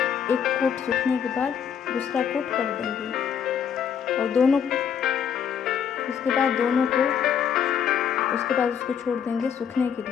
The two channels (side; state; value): right; quieter; 8.0 dB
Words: कोट सूखने के बाद दूसरा कोट कर देंगे, और उसके बाद उसको छोड़ देंगे सूखने के